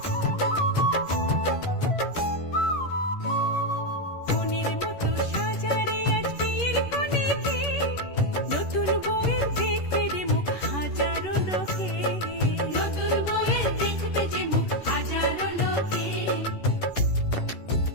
মনের মতো সাজারে আজ বিয়ের কনেকে, নতুন বউয়ের দেখবে রে মুখ হাজারো লোকে। নতুন বউয়ের দেখবে যে মুখ হাজারো লোকে।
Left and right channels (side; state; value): right; late; 11 ms